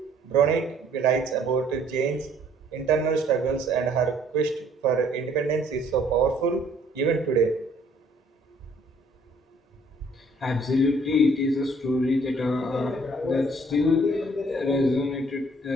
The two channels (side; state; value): both; normal; correlation 0.60